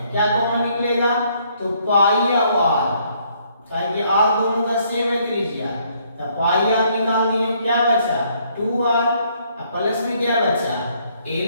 क्या कॉमन निकलेगा, तो पाई और r, ताकि r दोनों का सेम है त्रिज्या, तो पाई r निकाल दिए, क्या बचा 2r, और प्लस में क्या बचा l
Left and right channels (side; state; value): both; inverted; correlation -0.68